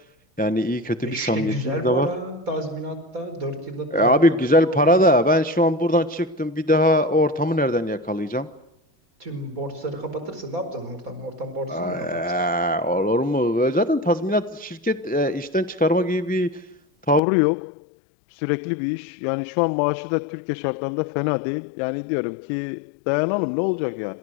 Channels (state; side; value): drops out; right; at 17.2 s